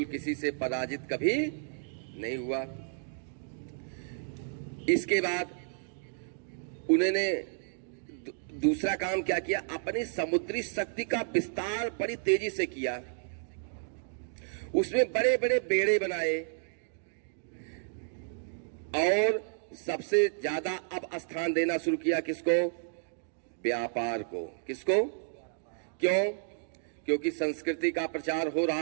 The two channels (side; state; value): left; silent; digital silence